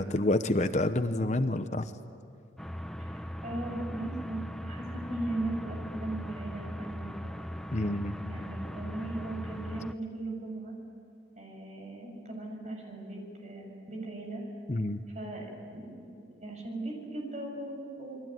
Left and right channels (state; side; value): normal; both; correlation 0.71